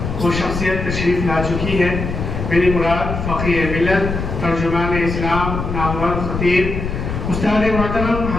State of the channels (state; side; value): noise; left; rumble, 4 dB below the sound